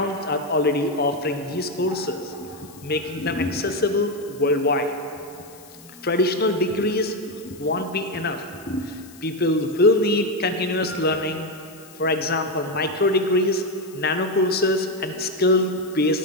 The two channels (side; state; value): left; noise; hiss, 22 dB below the sound